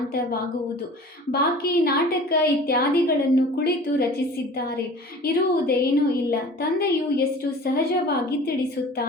ಬಾಕಿ ನಾಟಕ ಇತ್ಯಾದಿಗಳನ್ನು ಕುಳಿತು ರಚಿಸಿದ್ದಾರೆ, ಇರುವುದೇನೂ ಇಲ್ಲ. ತಂದೆಯು ಎಷ್ಟು ಸಹಜವಾಗಿ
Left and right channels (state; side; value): normal; both; correlation 0.43